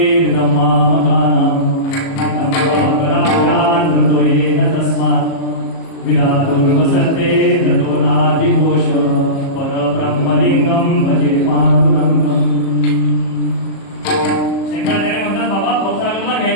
ब्रह्मामगानम विधातुर्वसते ततो नादिघोष परब्रह्मलिंगम भजे पांडुरंगम. शंकराचार्य म्हणतात बाबा भाऊसागराला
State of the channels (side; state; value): right; late; 37 ms